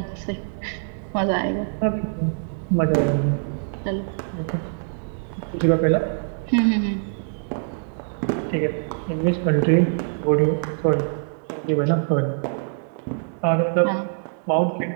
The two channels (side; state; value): left; silent; digital silence